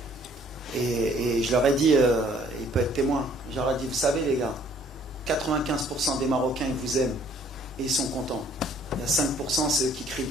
Et je leur ai dit, il peut être témoin, je leur ai dit, vous savez les gars, 95% des Marocains, ils vous aiment et ils sont contents. Il y a 5%, c'est eux qui crient le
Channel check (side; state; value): both; normal; correlation 0.59